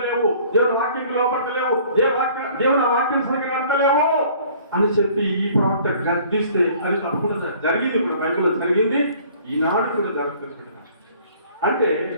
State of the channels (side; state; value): both; inverted; correlation -0.54